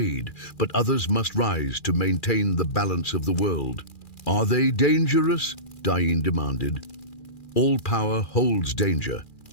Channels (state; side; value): late; right; 2.4 ms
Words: but others must rise to maintain the balance of the world." "Are they dangerous?" Dain demanded. "All power holds danger,"